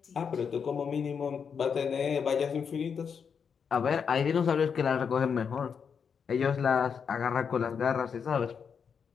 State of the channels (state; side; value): quieter; right; 6.6 dB